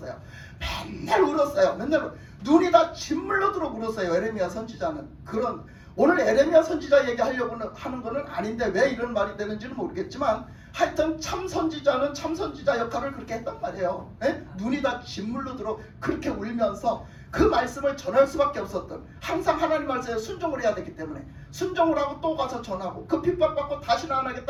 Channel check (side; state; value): both; identical; correlation 1.00